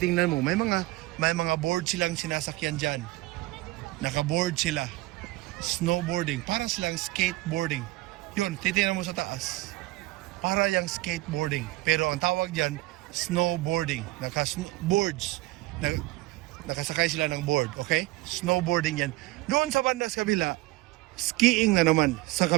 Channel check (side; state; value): left; quieter; 19.7 dB